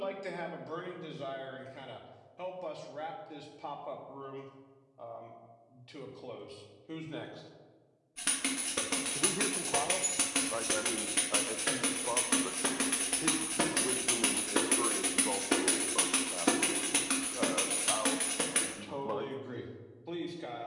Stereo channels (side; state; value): both; identical; correlation 1.00